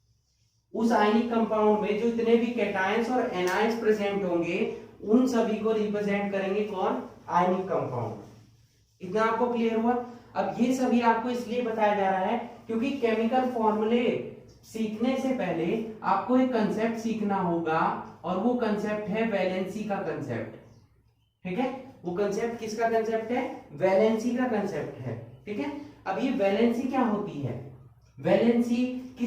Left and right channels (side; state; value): both; identical; correlation 1.00